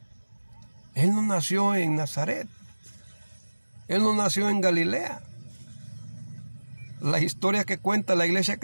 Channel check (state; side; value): inverted; both; correlation -1.00